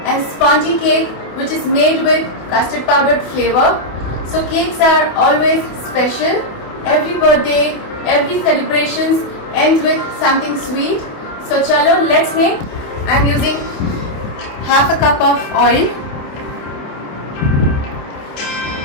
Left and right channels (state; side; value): late; right; 28 ms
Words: and spongy cake which is made with custard powdered flavor. So cakes are always special. Every birthday, every celebrations ends with something sweet. So chalo, let's make. I am using half a cup of oil.